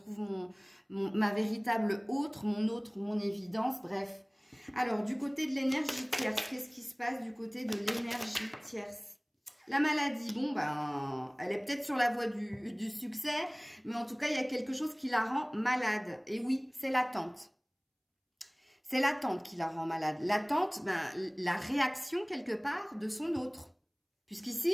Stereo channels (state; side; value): identical; both; correlation 1.00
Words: ma véritable autre, mon évidence, bref. Alors, du côté de l'énergie tierce, qu'est-ce qui se passe du côté de l'énergie tierce? La maladie, bon, ben, elle est peut-être sur la voie du succès, mais en tout cas, il y a quelque chose qui la rend malade. Et oui, c'est l'attente. C'est l'attente qui la rend malade. L'attente, ben, la réaction quelque part de son autre. Puisqu'ici,